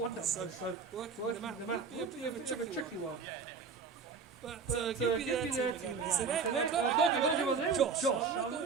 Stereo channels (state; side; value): quieter; left; 5.3 dB